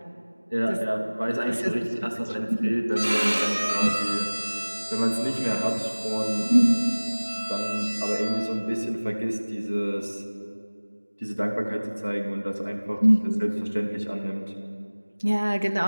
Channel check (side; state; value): both; inverted; correlation -1.00